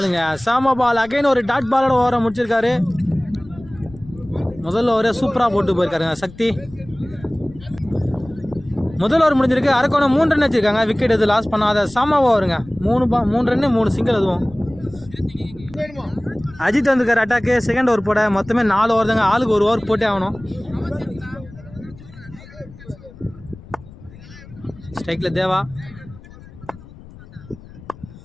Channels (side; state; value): left; noise; rumble, 20 dB below the sound